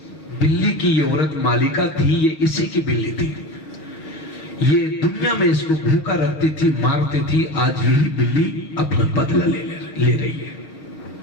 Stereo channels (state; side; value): late; right; 6.4 ms